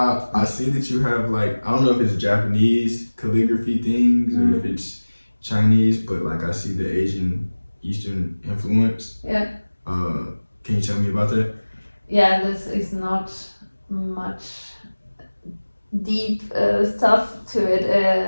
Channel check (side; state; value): both; inverted; correlation -1.00